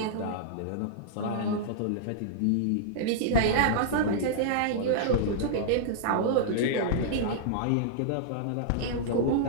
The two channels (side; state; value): both; different; correlation -0.02